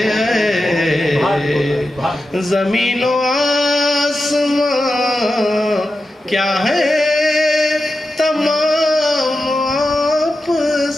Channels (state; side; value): normal; both; correlation 0.91